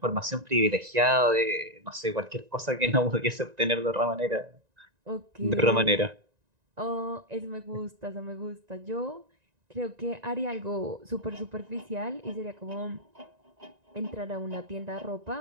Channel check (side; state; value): left; late; 1.9 ms